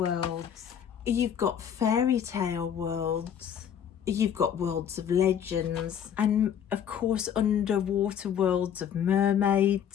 You've got fairy tale worlds. You've got worlds of legends. And of course, underwater worlds of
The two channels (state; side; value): quieter; right; 8.8 dB